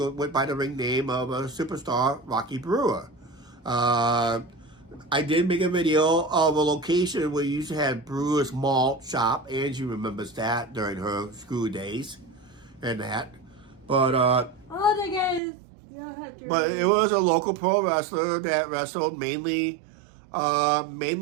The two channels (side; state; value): left; drops out; at 15.4 s